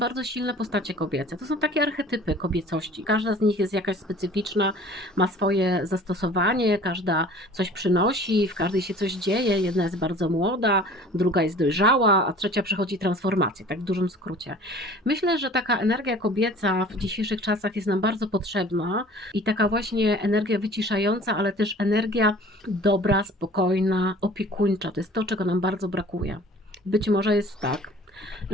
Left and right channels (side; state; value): both; normal; correlation 0.47